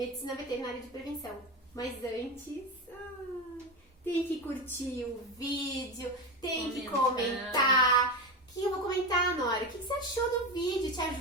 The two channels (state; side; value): normal; both; correlation 0.19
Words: veterinária de prevenção. Mas antes, tem que curtir o vídeo, tem que comentar. O que eu vou comentar, Nora? O que você achou do vídeo? Te